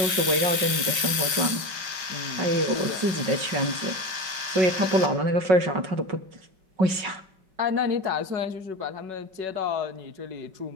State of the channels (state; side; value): late; left; 5.1 ms